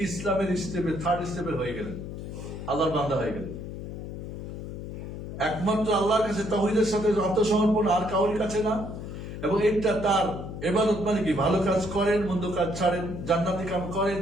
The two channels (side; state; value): left; noise; hum, 8 dB below the sound